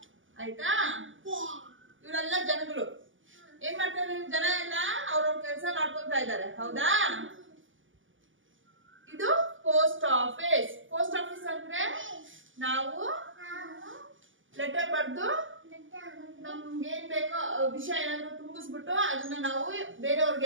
ಆಯ್ತಾ. ಇವರೆಲ್ಲ ಜನಗಳು ಏನ್ ಮಾಡ್ತಾ ಇದ್ದಾರೆ, ಜನ ಎಲ್ಲ ಅವ್ರವ್ರ ಕೆಲಸ ಮಾಡ್ಕೊಂತ ಇದ್ದಾರೆ ಹೌದಾ. ಇದು ಪೋಸ್ಟ್ ಆಫೀಸ್. ಪೋಸ್ಟ್ ಆಫೀಸ್ ಅಂದ್ರೆ ನಾವು ಲೆಟರ್ ಬರ್ದು ನಮ್ಗೆ ಏನ್ ಬೇಕೋ ವಿಷಯ ಏನಾದ್ರು ತುಂಬಿಸ್ಬಿಟ್ಟು ಅದನ್ನ ನಾವು ಬೇರೆಯವ್ರಿಗೆ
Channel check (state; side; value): late; left; 0.57 ms